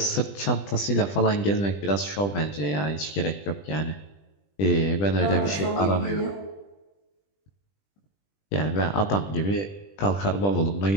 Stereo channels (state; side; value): late; right; 20 ms